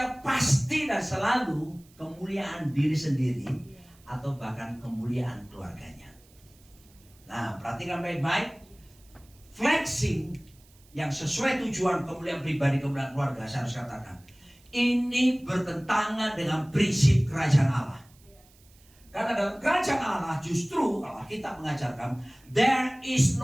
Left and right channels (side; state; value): right; noise; hiss, 29 dB below the sound